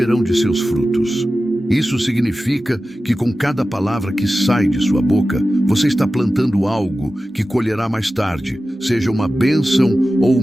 de seus frutos. Isso significa que com cada palavra que sai de sua boca, você está plantando algo que colherá mais tarde, seja uma bênção ou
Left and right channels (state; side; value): normal; both; correlation 0.94